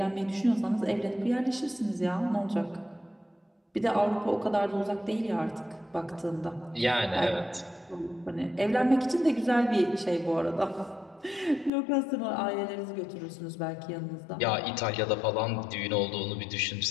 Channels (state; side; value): drops out; right; at 11.7 s